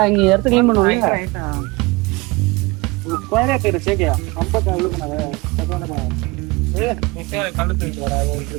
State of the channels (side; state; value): left; quieter; 24.2 dB